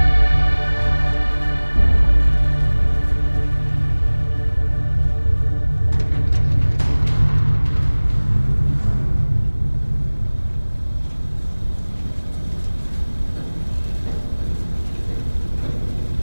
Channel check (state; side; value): inverted; both; correlation -1.00